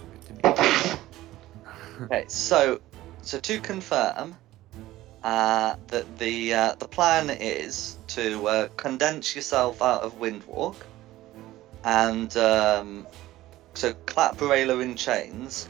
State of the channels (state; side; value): quieter; left; 15.9 dB